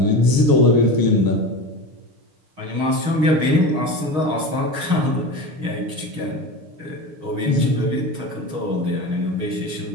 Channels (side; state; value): left; late; 6.5 ms